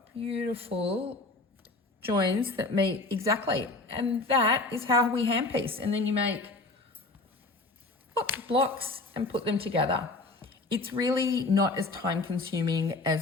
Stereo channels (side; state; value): right; quieter; 3.2 dB